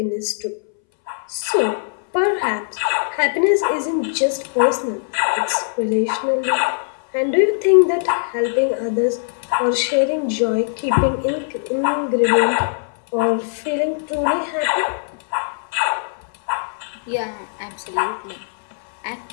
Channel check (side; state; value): right; silent; 63 dB below the other